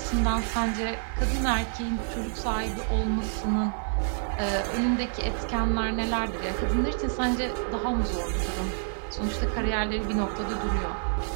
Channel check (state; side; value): silent; left; 59 dB below the other